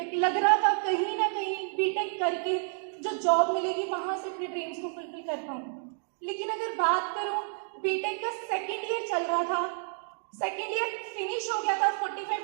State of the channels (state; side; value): silent; left; 58 dB below the other